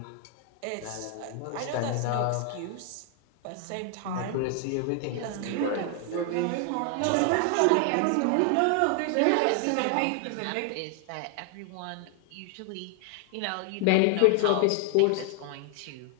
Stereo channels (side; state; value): both; different; correlation 0.00